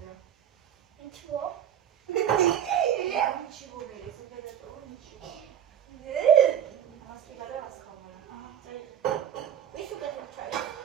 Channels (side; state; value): left; quieter; 9.8 dB